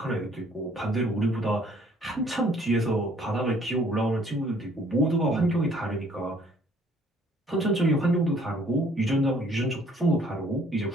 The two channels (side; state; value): both; normal; correlation 0.60